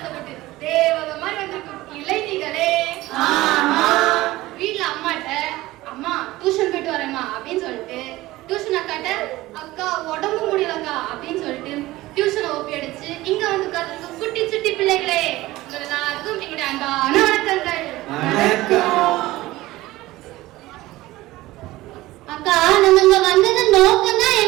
தேவத மாதிரி வந்திருக்கும் இளைஞர்களே, வீட்டுல அம்மாட்ட அம்மா டியூஷன் போயிட்டு வரேம்மா அப்படின்னு சொல்லிட்டு டியூஷன் அக்காட்ட அக்கா உடம்பு முடியலக்கா அப்படின்னு சொல்லிட்டு டியூஷனை ஒப்பி அடிச்சு இங்க வந்து உட்கார்ந்து குட்டி சுட்டி பிள்ளைகளே, எல்லாருக்கும் எங்களுடைய அன்பான வணக்கங்கள். அக்கா, நம்ம இங்க வந்தது நோக்கம் தான்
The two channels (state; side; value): quieter; left; 17.9 dB